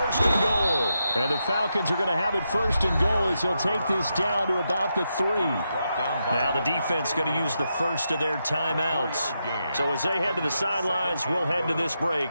and goal. And the Falcons are going to have it 1st and goal as he'll take this down to about the 3. Now the defense going to use the first of their timeouts. So as they head to the sidelines, we'll head to this break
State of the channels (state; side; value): inverted; both; correlation -0.85